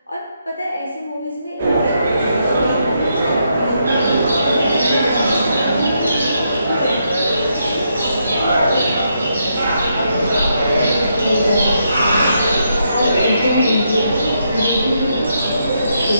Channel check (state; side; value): inverted; both; correlation -0.79